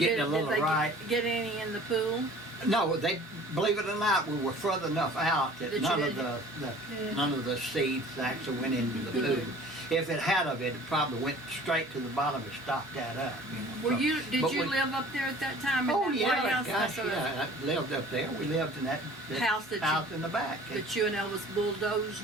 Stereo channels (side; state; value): both; normal; correlation 0.48